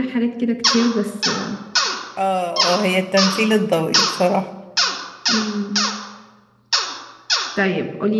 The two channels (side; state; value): both; identical; correlation 1.00